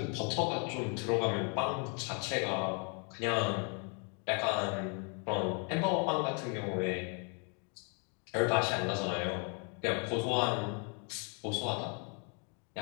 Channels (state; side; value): quieter; right; 37.8 dB